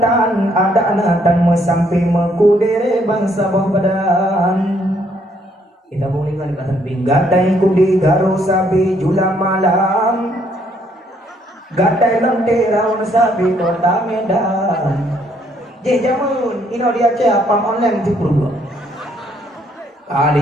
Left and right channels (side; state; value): both; normal; correlation 0.68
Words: ada anatan mesampi mekudere bangsa badan. Kita boleh kan kata pinggatai kudi garo sabi jula malam gatai lentera un sabi kota Medan. Jamun, ino dia cakap online tu perlu.